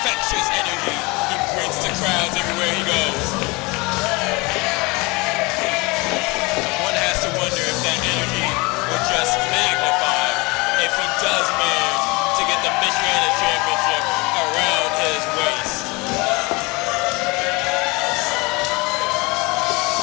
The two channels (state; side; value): quieter; right; 25.6 dB